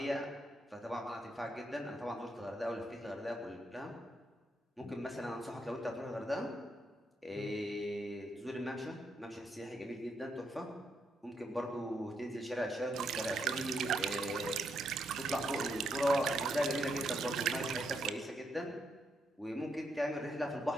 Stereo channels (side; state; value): both; normal; correlation 0.78